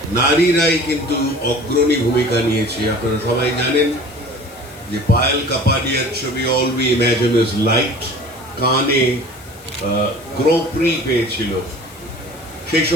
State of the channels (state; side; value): noise; left; hiss, 22 dB below the sound